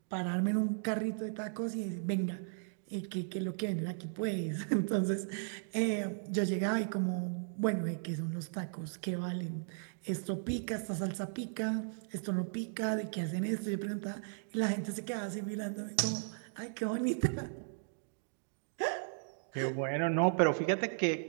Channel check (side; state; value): left; silent; digital silence